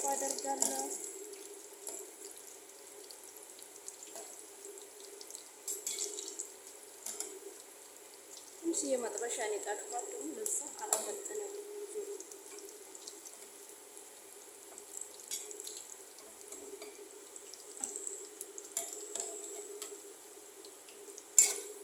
አደርጋለሁ። ትንሽ የመጥበሻ ነው የጣድኳት ደግሞ ለዛ አላፈጠነም።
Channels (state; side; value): identical; both; correlation 1.00